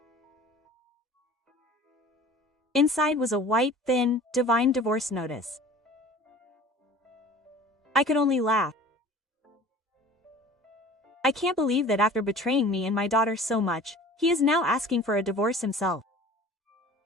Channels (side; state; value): both; normal; correlation 0.44